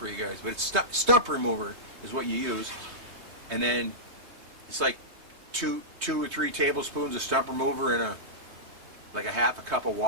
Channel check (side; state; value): left; late; 3.3 ms